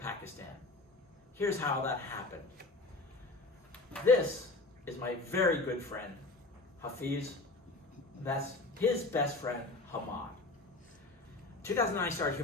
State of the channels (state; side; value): quieter; right; 3.2 dB